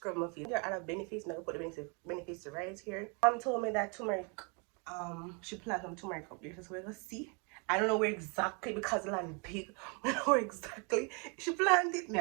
my feet. There are other benefits, now I put the benefits right here. Mom told me that turmeric, she planted some turmeric up there, so we're gonna see. I don't know where exactly because the land is big. I don't know where exactly she planted it. Me,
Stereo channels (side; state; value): left; quieter; 34.1 dB